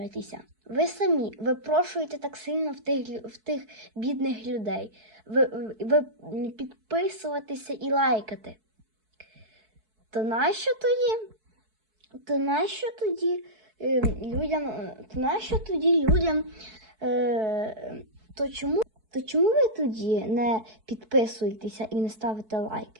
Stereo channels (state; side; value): late; left; 4.6 ms